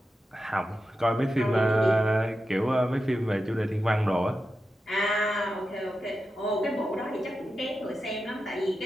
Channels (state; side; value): normal; both; correlation 0.90